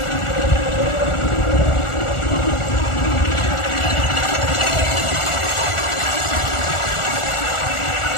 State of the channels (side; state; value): right; late; 1.4 ms